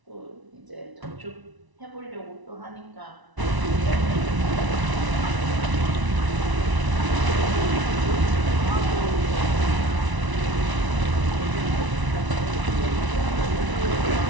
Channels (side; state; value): left; late; 1.0 ms